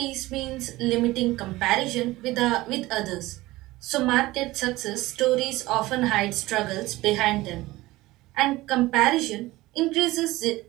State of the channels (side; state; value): left; quieter; 18.8 dB